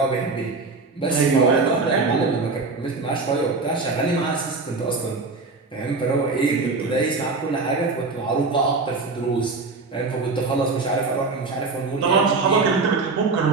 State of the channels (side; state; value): left; quieter; 3.9 dB